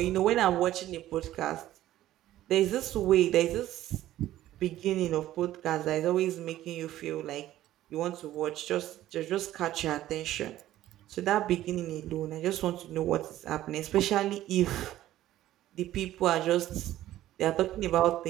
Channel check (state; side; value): quieter; left; 13.9 dB